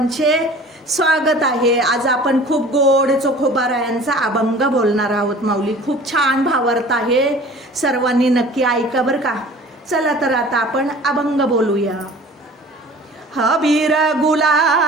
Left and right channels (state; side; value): normal; both; correlation 0.45